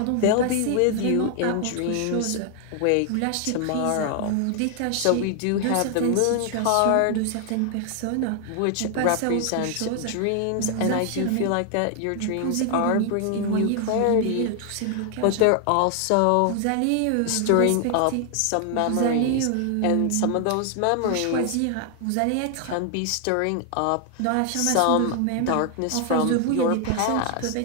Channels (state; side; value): different; both; correlation 0.00